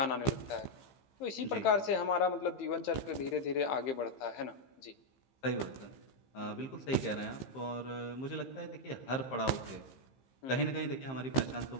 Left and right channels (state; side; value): late; right; 15 ms